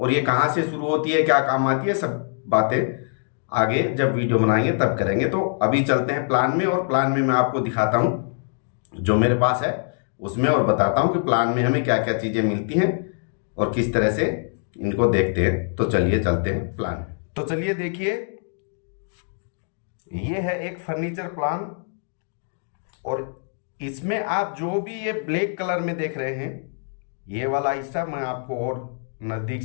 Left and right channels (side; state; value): right; silent; 63 dB below the other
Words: ये कहां से शुरू होती है, क्या काम आती है, सब बातें आगे जब वीडियो बनाएंगे तब करेंगे। तो अभी चलते हैं प्लान में, और प्लान में मैं आपको दिखाता हूं जो मेरे पास है उसमें, और बताता हूं कि प्लान में हमें क्या क्या चीजें मिलती हैं और किस तरह से इनको देखते हैं। तो चलिए चलते हैं प्लान। तो चलिए देखिए, ये है एक फर्नीचर प्लान, और इसमें आप जो भी ये ब्लैक कलर में देख रहे हैं, ये वाला हिस्सा मैं आपको और नज़दीक